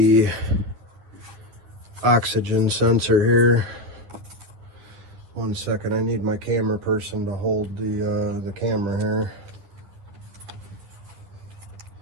oxygen sensor here. 1 second, I need my camera person to hold the camera here.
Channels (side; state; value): left; late; 9.6 ms